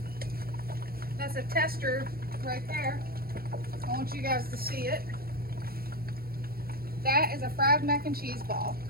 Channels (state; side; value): late; left; 0.44 ms